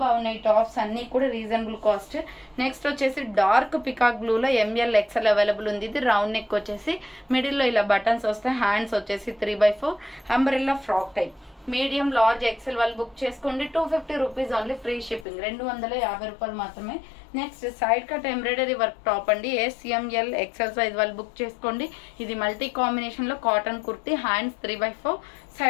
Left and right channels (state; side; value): drops out; right; at 15.2 s